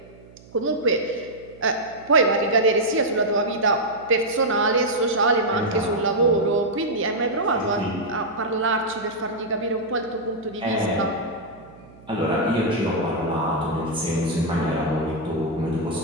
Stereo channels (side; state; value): right; noise; hum, 23 dB below the sound